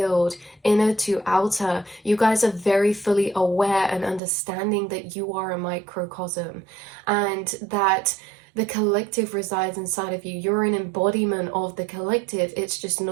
inner to outer. You guys are very fully aware and understanding that you are a microcosm, and that the collective resides inside of you. You're an embodiment of the collective. It's just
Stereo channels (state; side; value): drops out; left; at 4.2 s